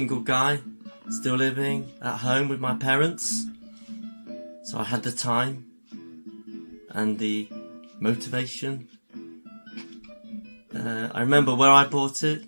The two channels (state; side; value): inverted; both; correlation -1.00